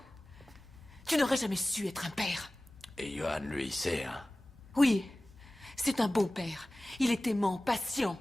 tu n'aurais jamais su être un père. Et Johan, lui, il sait, hein. Oui, c'est un bon père. Il est aimant, patient.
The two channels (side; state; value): both; normal; correlation 0.97